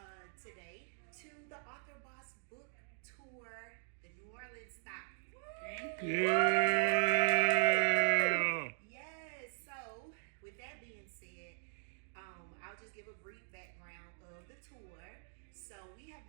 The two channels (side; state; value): left; silent; digital silence